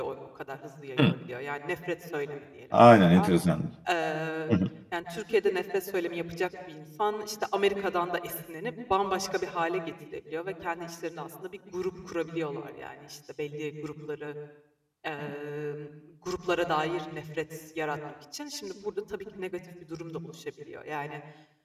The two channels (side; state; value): both; identical; correlation 1.00